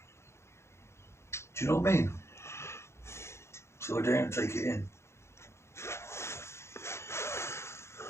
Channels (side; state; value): right; late; 0.13 ms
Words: you know what I mean? So I daren't take it in.